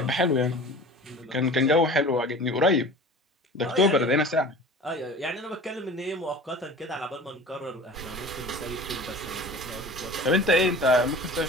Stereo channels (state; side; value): normal; both; correlation 0.40